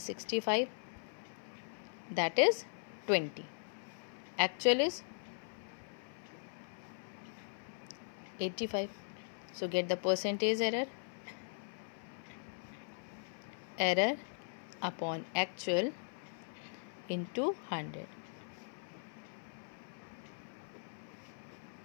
65, that is 20. Actual is 85. So get the percentage error. Error upon actual into 100.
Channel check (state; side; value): silent; right; 51 dB below the other